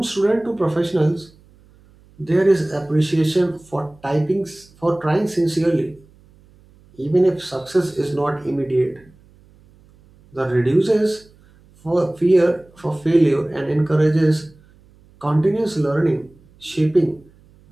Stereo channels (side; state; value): right; noise; hum, 29 dB below the sound